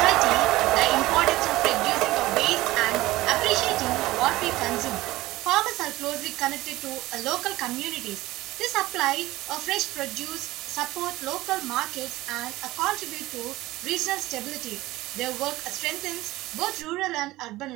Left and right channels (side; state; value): left; quieter; 18.1 dB